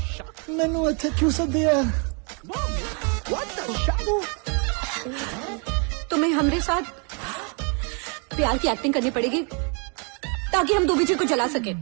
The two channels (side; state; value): left; quieter; 36.7 dB